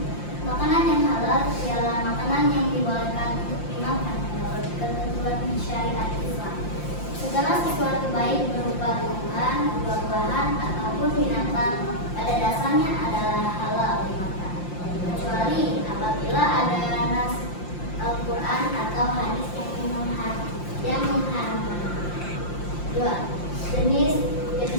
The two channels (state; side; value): late; right; 5.7 ms